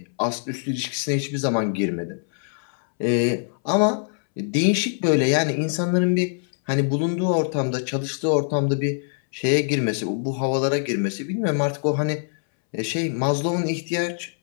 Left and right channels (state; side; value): silent; right; 63 dB below the other